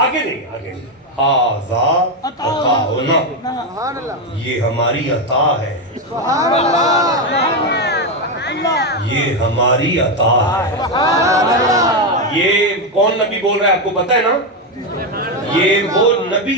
نہیں، آگے نہیں. ھذا عطاؤنا، یہ ہماری عطا ہے، یہ ہماری عطا ہے. یہ کون نبی بول رہا ہے آپ کو پتہ ہے نا؟ یہ وہ نبی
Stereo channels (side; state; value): both; normal; correlation 0.07